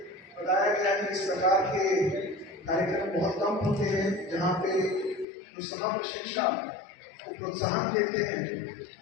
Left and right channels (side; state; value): right; drops out; at 5.2 s